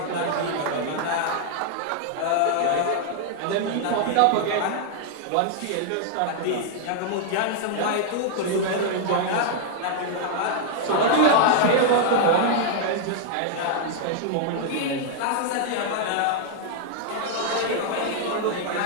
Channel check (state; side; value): different; both; correlation 0.00